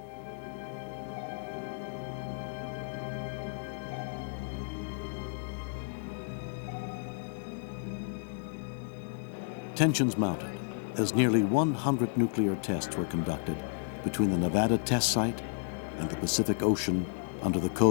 Tensions mounted as nearly 100 nuclear tests were conducted between the Nevada test site and the Pacific Ocean under the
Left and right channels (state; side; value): silent; right; digital silence